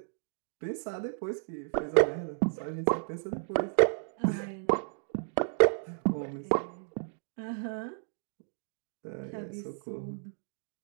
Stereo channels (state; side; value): silent; left; digital silence